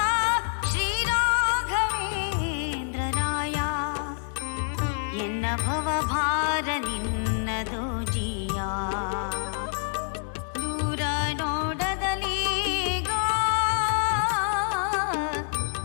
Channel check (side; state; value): right; silent; 60 dB below the other